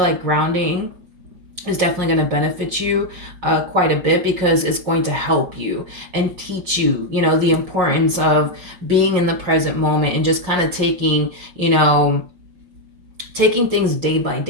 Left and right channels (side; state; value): left; late; 5.6 ms